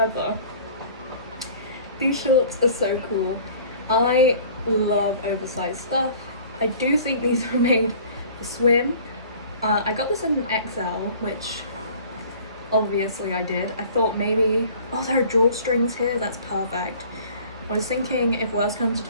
these shorts are so cool. I love oversized stuff. I do think these are made for swim. I got this in an XL, which obviously I did. I thought maybe, oh, there are drawstrings here, that's perfect. I was thinking if worse comes to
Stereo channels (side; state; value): both; inverted; correlation -0.48